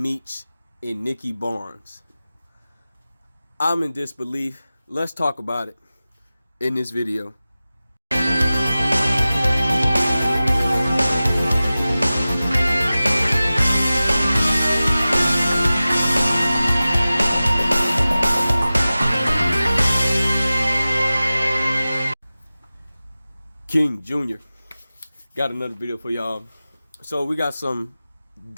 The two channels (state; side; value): inverted; both; correlation -0.96